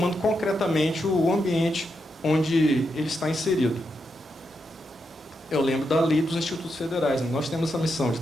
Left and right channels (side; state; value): both; normal; correlation 0.84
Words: concretamente o ambiente onde ele está inserido. Eu lembro da lei dos institutos federais, né? Nós temos essa missão de